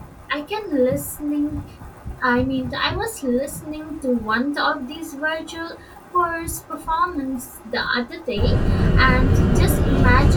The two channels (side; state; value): both; identical; correlation 1.00